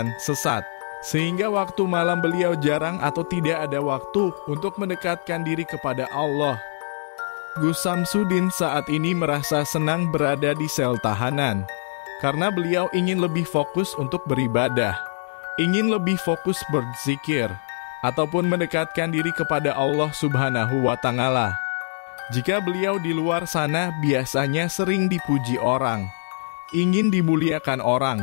sesat, sehingga waktu malam beliau jarang atau tidak ada waktu untuk mendekatkan diri kepada Allah. Gus Samsudin saat ini merasa senang berada di sel tahanan, karena beliau ingin lebih fokus untuk beribadah, ingin lebih fokus berzikir, ataupun mendekatkan diri kepada Allah Subhanahu wa Ta'ala. Jika beliau di luar sana biasanya sering dipuji orang, ingin dimuliakan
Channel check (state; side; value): silent; right; 63 dB below the other